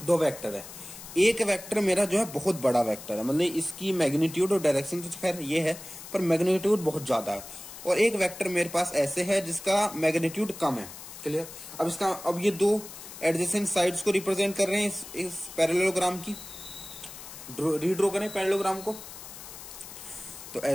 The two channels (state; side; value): noise; left; hiss, 14 dB below the sound